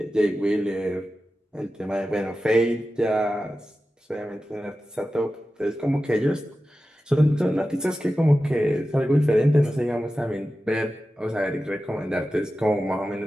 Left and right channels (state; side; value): normal; both; correlation 0.93